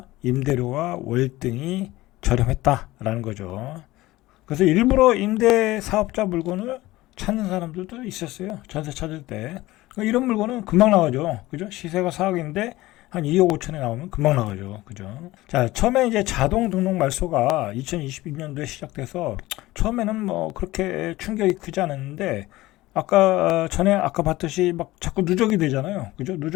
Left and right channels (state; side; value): quieter; right; 18.1 dB